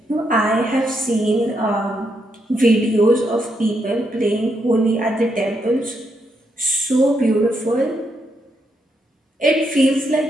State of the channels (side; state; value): both; normal; correlation 0.79